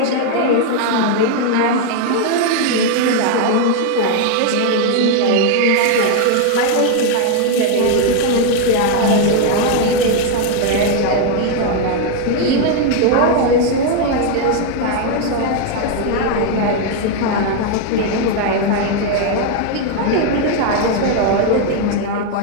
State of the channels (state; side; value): different; both; correlation 0.01